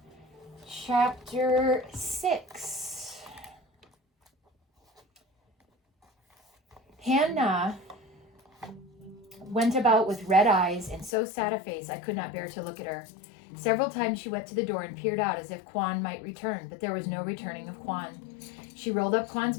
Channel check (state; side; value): drops out; right; at 11.2 s